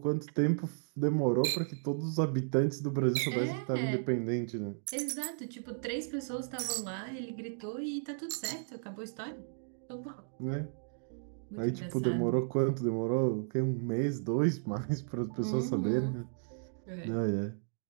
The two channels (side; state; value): left; silent; digital silence